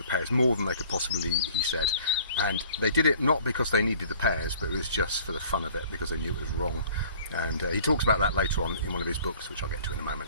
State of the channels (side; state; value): both; inverted; correlation -0.52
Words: pears, more than they could possibly eat, he said. And they did it not because they needed the pears, but it was just for the fun of it, because they knew it was wrong. And he talks about that later on in one of his books, which I'll get to in a